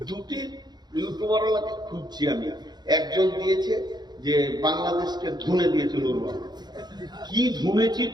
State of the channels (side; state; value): left; late; 0.20 ms